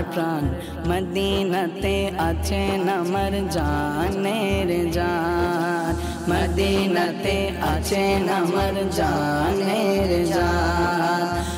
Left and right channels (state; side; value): identical; both; correlation 1.00